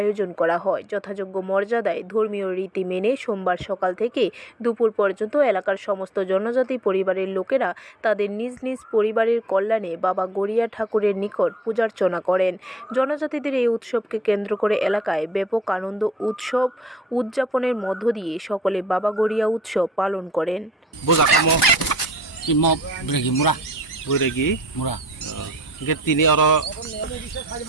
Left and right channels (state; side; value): normal; both; correlation 0.62